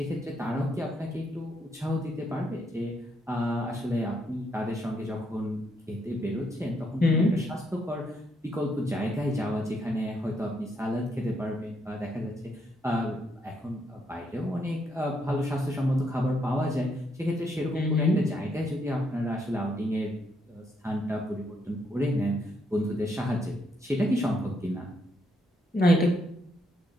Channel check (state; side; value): normal; both; correlation 0.75